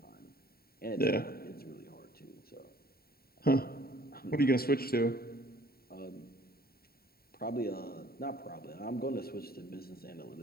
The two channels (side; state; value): right; late; 0.44 ms